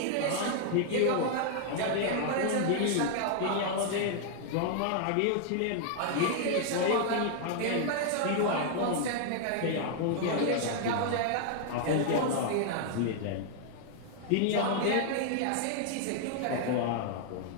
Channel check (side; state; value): both; different; correlation 0.00